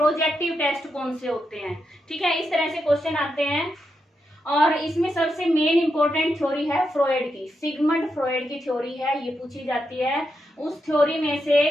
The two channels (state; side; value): normal; both; correlation 0.84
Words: टेस्ट कौन से होते हैं। ठीक है, इस तरह से क्वेश्चन आते हैं। और इसमें सबसे मेन इंपॉर्टेंट थ्योरी है फ्रॉयड की, सिगमंड फ्रॉयड की थ्योरी है, ये पूछी जाती है। उस थ्योरी में से